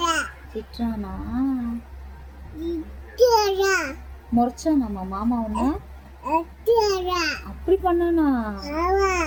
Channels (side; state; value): both; identical; correlation 1.00